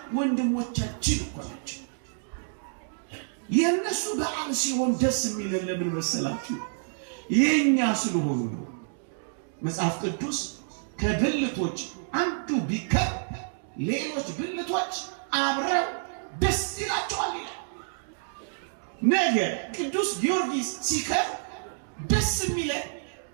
ወንድሞቻችን እኮ ናቸው። የነሱ በዓል ሲሆን ደስ የሚለን ለምን መሰላችሁ? የኛ ስለሆኑ ነው። መጽሐፍ ቅዱስ ከብልቶች አንዱ ቢከር ሌሎች ብልቶች አብረው ደስ ይላቸዋል ይላል። ነገ ቅዱስ ጊዮርጊስ ሲከር ደስ የሚለን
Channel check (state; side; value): silent; left; digital silence